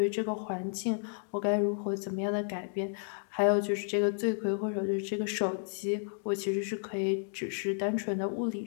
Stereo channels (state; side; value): silent; right; digital silence